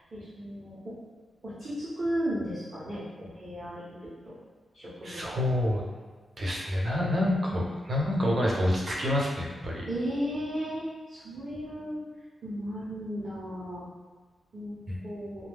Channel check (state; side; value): normal; both; correlation 0.83